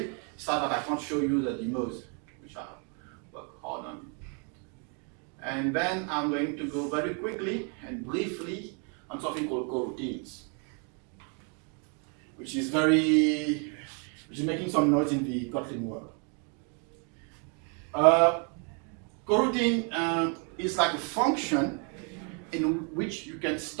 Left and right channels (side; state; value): left; quieter; 38.7 dB